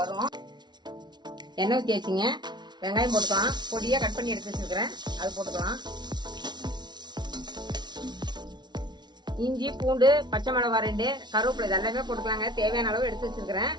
எண்ணெய் ஊற்றி வச்சுங்க. வெங்காயம் போட்டுக்கலாம். பொடியா கட் பண்ணி எடுத்து வச்சிருக்கிறேன், அது போட்டுக்கலாம். இஞ்சி, பூண்டு, பச்சை மிளகாய் 2, கருவேப்பிலை இதெல்லாமே போட்டுக்கலாங்க. தேவையான அளவு எடுத்து வச்சிருக்கிறேன்.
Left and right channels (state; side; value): late; left; 0.20 ms